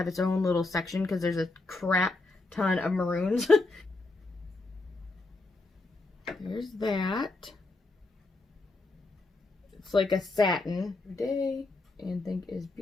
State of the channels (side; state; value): right; quieter; 3.3 dB